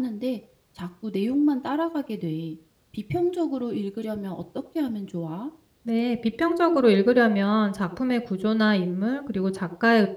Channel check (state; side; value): identical; both; correlation 1.00